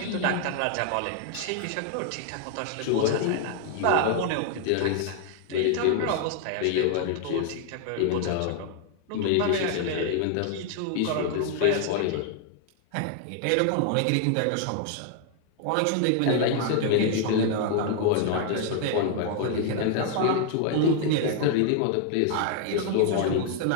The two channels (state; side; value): different; both; correlation 0.00